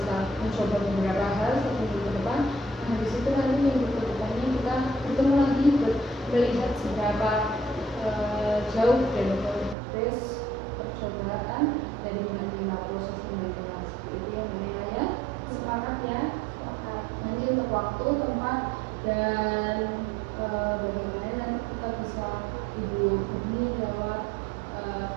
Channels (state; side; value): drops out; left; at 9.8 s